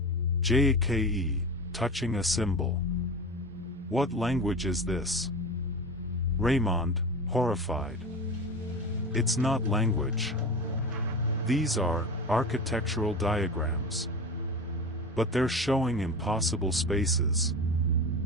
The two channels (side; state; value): both; normal; correlation 0.29